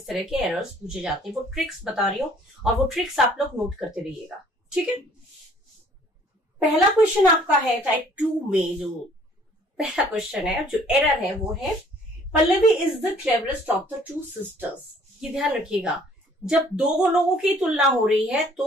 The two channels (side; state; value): both; normal; correlation 0.57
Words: तरह के एरर्स पूछे जाते हैं वो ट्रिक्स बता रही हूँ और वो ट्रिक्स आप लोग नोट करते रहिएगा। ठीक है, पहला क्वेश्चन आपका है टाइप 2 में, जो पहला क्वेश्चन है, जो एरर है वो है Pallavi is the cleverest of the 2 sisters. ये ध्यान रखिएगा, जब दो लोगों की तुलना हो रही है